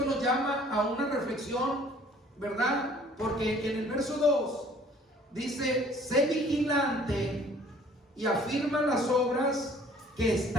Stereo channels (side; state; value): both; normal; correlation 0.55